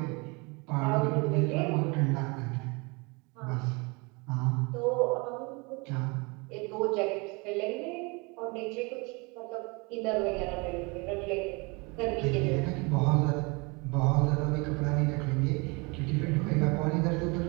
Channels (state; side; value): quieter; left; 28.6 dB